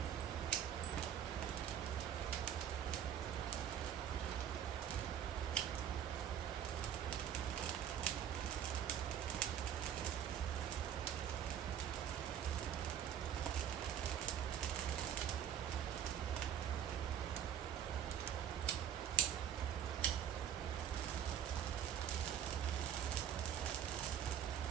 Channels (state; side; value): quieter; left; 9.4 dB